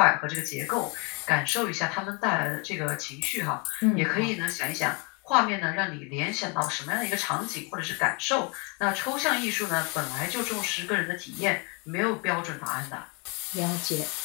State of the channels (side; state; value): right; quieter; 31.8 dB